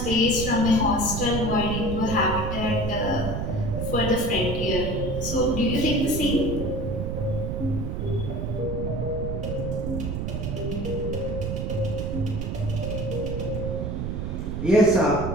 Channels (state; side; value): noise; right; rumble, 2 dB below the sound